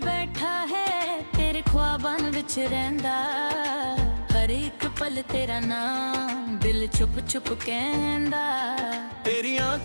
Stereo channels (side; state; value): both; inverted; correlation -1.00